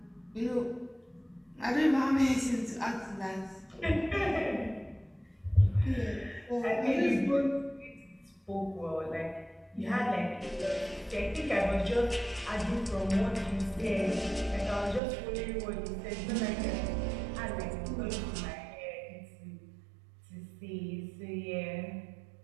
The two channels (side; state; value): left; drops out; at 15.0 s